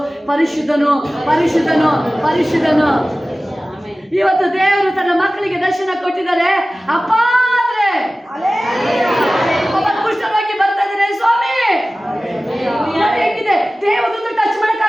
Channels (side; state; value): both; normal; correlation 0.97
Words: ಪರಿಶುದ್ಧನು ಪರಿಶುದ್ಧನು ಪರಿಶುದ್ಧನು. ಇವತ್ತು ದೇವರು ತನ್ನ ಮಕ್ಕಳಿಗೆ ದರ್ಶನ ಕೊಟ್ಟಿದ್ದಾರೆ. ಅಪ್ಪ ಅಂದ್ರೆ ಕುಷ್ಠರೋಗಿ ಬರ್ತಾ ಇದ್ದಾರೆ, ಸ್ವಾಮಿ ಹೇಗಿದೆ. ದೇವದೂತ ಟಚ್